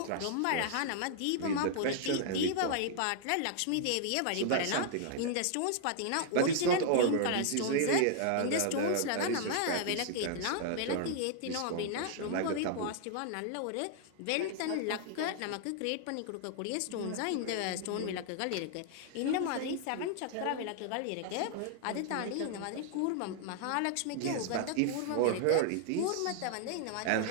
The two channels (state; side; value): different; both; correlation -0.01